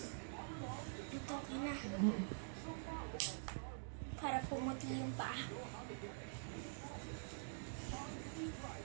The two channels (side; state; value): left; silent; digital silence